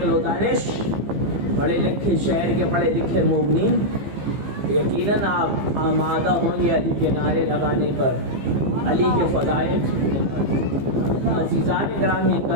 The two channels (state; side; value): late; left; 15 ms